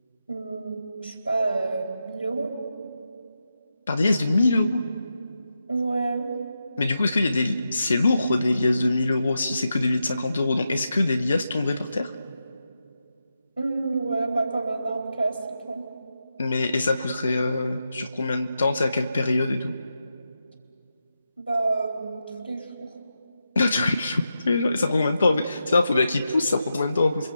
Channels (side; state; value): both; inverted; correlation -0.87